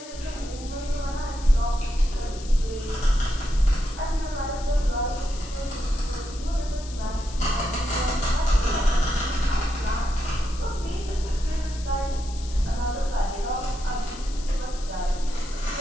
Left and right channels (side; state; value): left; noise; hiss, 16 dB below the sound